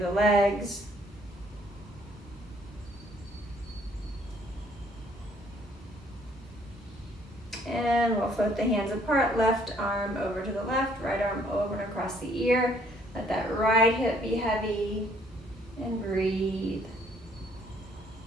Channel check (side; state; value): both; normal; correlation 0.64